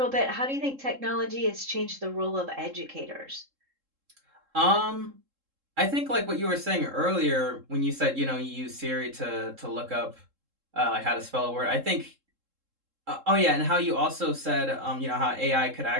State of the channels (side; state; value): left; late; 3.7 ms